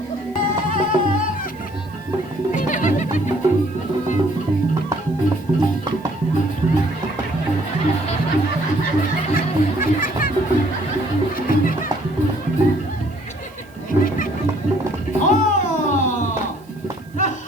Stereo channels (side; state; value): right; noise; hiss, 30 dB below the sound